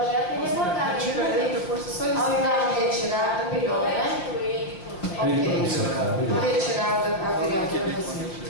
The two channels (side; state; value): right; late; 5.6 ms